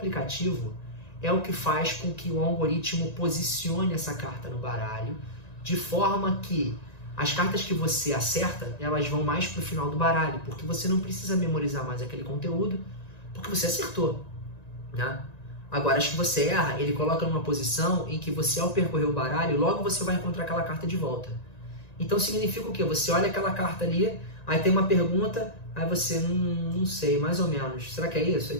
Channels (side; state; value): right; late; 1.9 ms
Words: é o que faz com que o algoritmo posicione essa carta no baralho de forma que as cartas que você acerta, elas vão mais para o final do baralho, porque você não precisa memorizar mais aquele conteúdo, porque você acertou, né? Agora, as que você erra, ele coloca numa posição em que você, ao percorrer o baralho, logo você vai encontrar aquela carta de volta. Então, significa o quê? Você olha aquela carta ali, aí tem uma pergunta, aí você, não sei, mais ou menos, será que é isso?